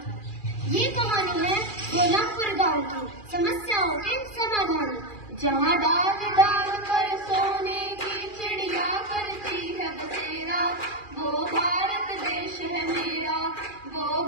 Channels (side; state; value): right; late; 2.4 ms